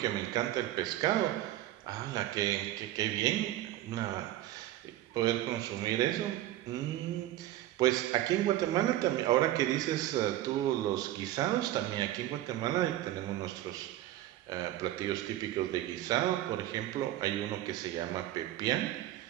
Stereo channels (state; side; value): quieter; left; 14.3 dB